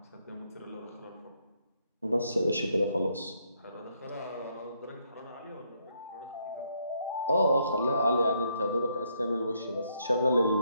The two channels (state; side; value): inverted; both; correlation -0.73